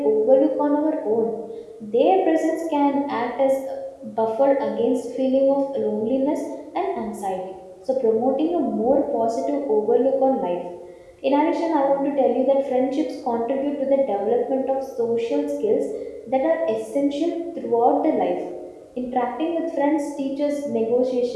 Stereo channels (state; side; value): identical; both; correlation 1.00